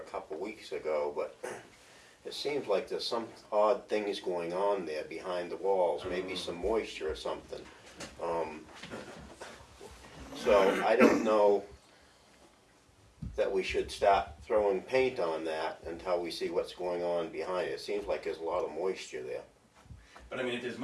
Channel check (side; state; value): both; identical; correlation 1.00